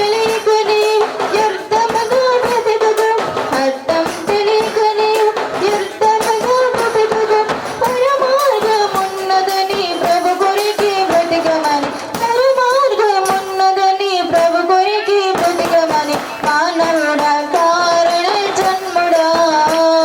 నీవు వ్యర్థముగా బ్రతకకు, అర్థం తెలియక నీవు వ్యర్థముగా బ్రతకకు. పరమార్గమున్నదని ప్రభు కొరకి బ్రతకమని, పరమార్గమున్నదని ప్రభు కొరకి బ్రతకమని. మానవుడా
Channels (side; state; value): both; identical; correlation 1.00